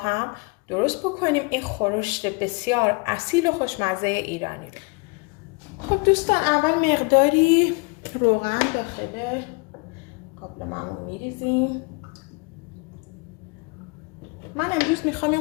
درست بکنیم این خورشت بسیار اصیل و خوشمزه ایرانی رو. خب دوستان، اول مقداری روغن داخل قابلمه‌مون میریزیم. من امروز میخوام این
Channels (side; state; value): right; quieter; 30.1 dB